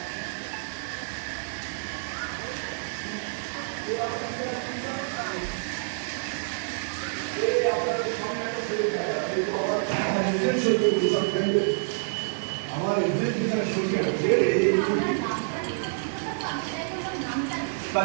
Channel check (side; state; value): left; silent; digital silence